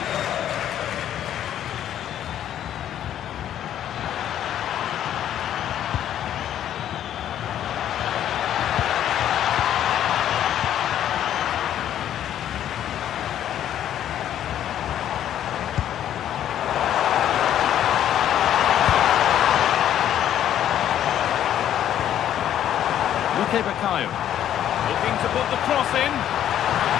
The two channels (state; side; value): quieter; right; 10.9 dB